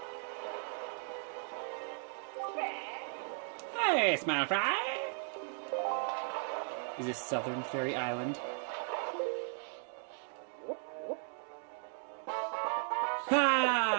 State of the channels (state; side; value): silent; left; 53 dB below the other